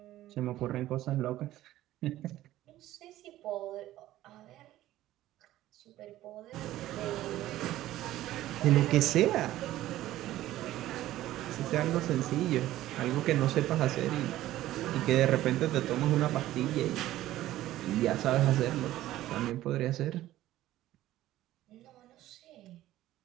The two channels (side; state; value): left; quieter; 14.6 dB